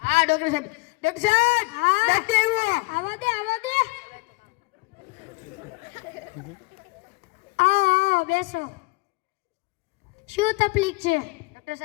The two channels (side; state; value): right; quieter; 26.8 dB